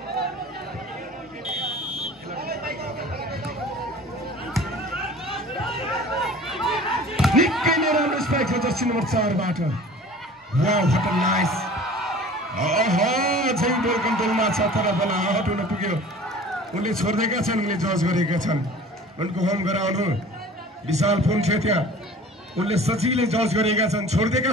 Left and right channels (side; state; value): both; normal; correlation 0.44